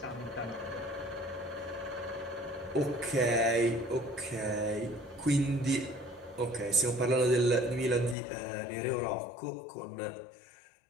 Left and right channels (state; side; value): drops out; right; at 8.2 s